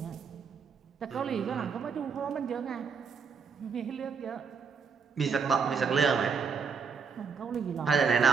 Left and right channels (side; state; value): left; quieter; 5.7 dB